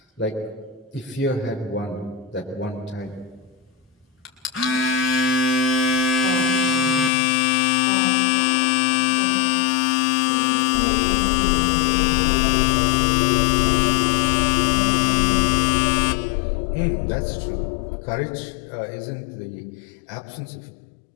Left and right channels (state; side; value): drops out; right; at 7.1 s